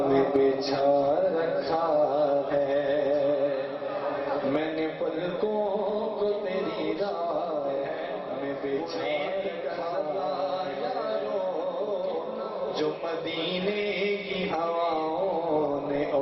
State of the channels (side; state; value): both; identical; correlation 1.00